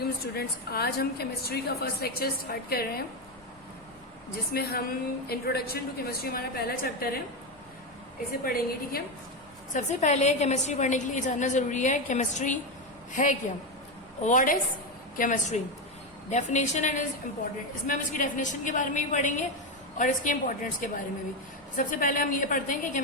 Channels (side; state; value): left; noise; rumble, 30 dB below the sound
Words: स्टूडेंट्स, आज हम केमिस्ट्री का फर्स्ट लेक्चर स्टार्ट कर रहे हैं जिसमें हम इंट्रोडक्शन टू केमिस्ट्री, हमारा पहला चैप्टर है, इसे पढ़ेंगे। ठीक है, सबसे पहले केमिस्ट्री पढ़ने के लिए जानना जरूरी है केमिस्ट्री है क्या। What is chemistry, definition and is important. इसमें हम इसकी डेफिनेशन के बारे में भी पढ़ेंगे और इसके इम्पोर्टेंस के बारे में भी। सबसे पहले हम ये पढ़ते हैं कि